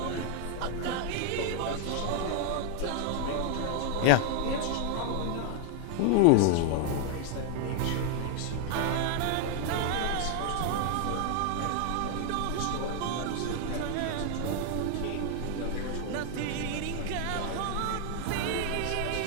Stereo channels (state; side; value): different; both; correlation 0.00